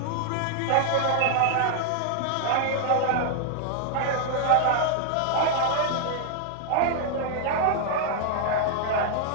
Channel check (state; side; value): different; both; correlation 0.00